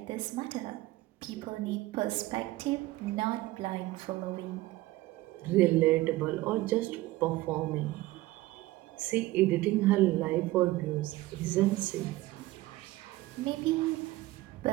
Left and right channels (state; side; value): quieter; left; 18.2 dB